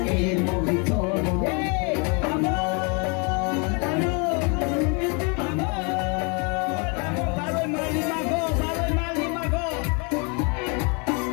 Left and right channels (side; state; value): right; quieter; 34.1 dB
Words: علم تو برای مالی مگا